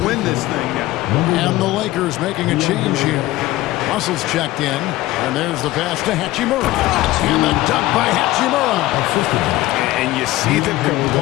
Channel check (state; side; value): quieter; right; 17.0 dB